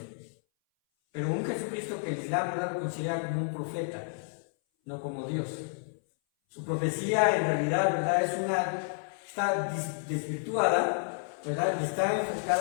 pero un Jesucristo que el Islam, ¿verdad?, lo considera como un profeta, no como Dios. Su profecía en realidad, ¿verdad?, está desvirtuada, ¿verdad?, y está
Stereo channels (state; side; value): silent; right; 57 dB below the other